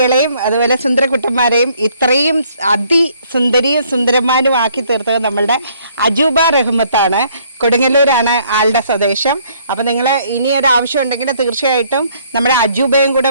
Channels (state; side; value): inverted; both; correlation -0.64